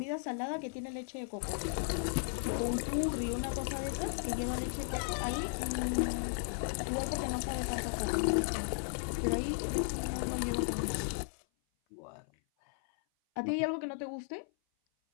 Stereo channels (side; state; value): right; silent; 54 dB below the other